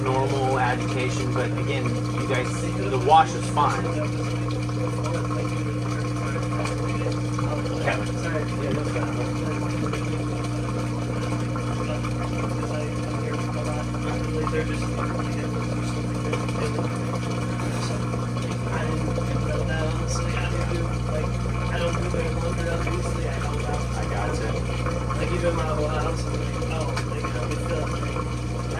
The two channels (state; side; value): identical; both; correlation 1.00